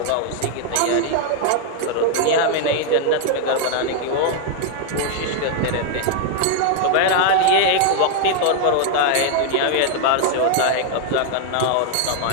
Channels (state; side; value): different; both; correlation 0.00